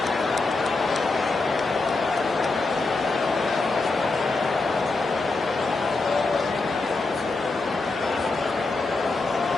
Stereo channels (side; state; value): right; quieter; 3.5 dB